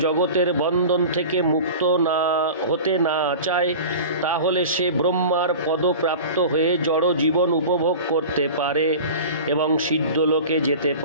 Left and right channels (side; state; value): both; inverted; correlation -0.35